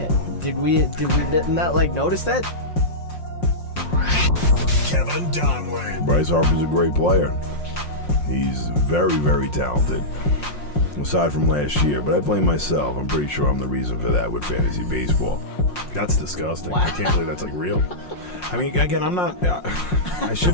Did we not notice that? Kevin Donlin. Bryce Harper's a great player. He's very, very talented. Aside from last year, but I blame myself. I'm pretty sure I'm the reason for that with fantasy baseball. That's disgusting. Wow. I can't believe that's real. I mean, again, I'm not. I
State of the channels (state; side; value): late; right; 5.6 ms